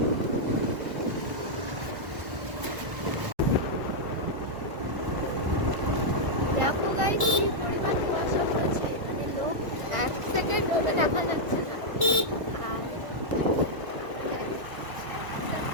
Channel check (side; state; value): left; late; 1.4 ms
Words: দেখো গাইস কি পরিমাণ কুয়াশা পড়েছে, মানে লোক এক সেকেন্ড ওটা দেখা যাচ্ছে না। আর